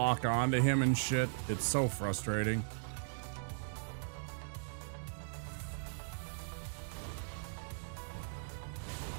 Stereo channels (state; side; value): silent; left; digital silence